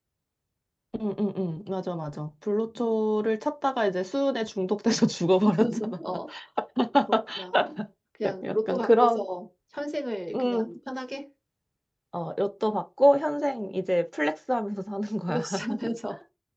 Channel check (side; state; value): both; identical; correlation 1.00